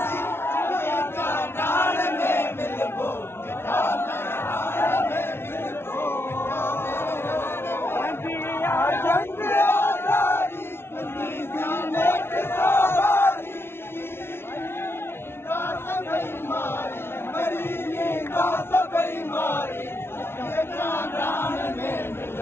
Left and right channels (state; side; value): late; right; 0.12 ms